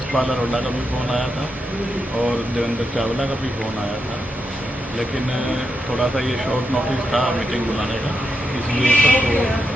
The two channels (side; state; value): both; normal; correlation 0.84